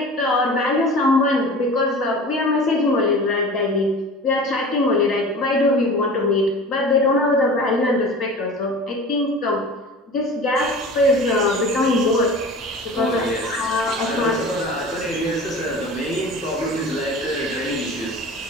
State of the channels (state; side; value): normal; both; correlation 0.37